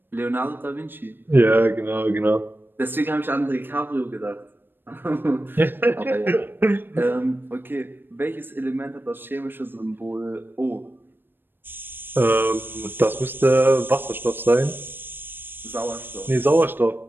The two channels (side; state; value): left; late; 0.097 ms